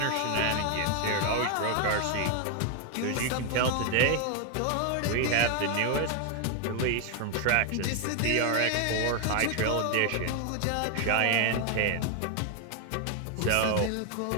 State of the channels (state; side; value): different; both; correlation 0.00